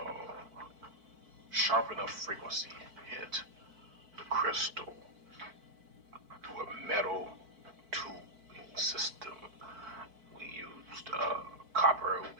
sharp enough frequency hit the crystal through a metal tubing system, we used copper,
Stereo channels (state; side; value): late; left; 4.5 ms